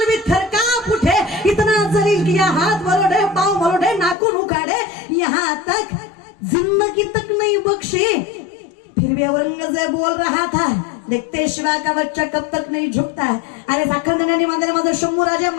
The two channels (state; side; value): drops out; right; at 4.2 s